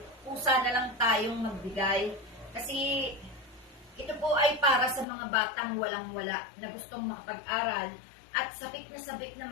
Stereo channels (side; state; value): right; drops out; at 5.1 s